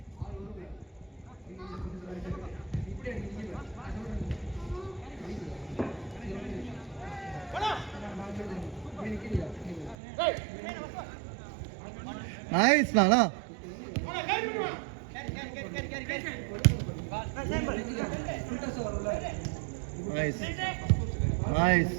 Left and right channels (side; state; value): left; drops out; at 10.0 s